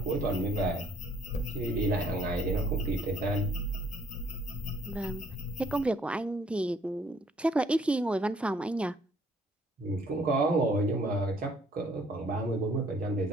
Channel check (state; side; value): normal; both; correlation 0.62